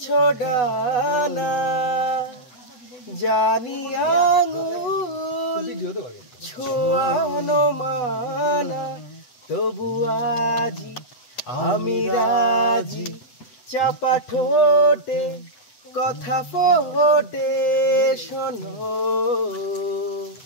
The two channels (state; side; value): late; right; 8.0 ms